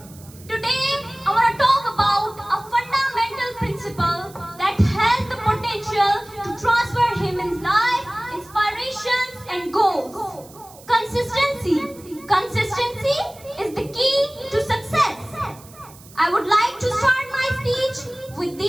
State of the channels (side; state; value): right; noise; hiss, 22 dB below the sound